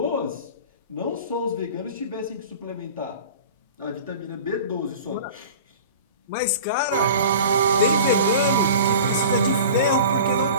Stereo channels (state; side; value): inverted; both; correlation -0.39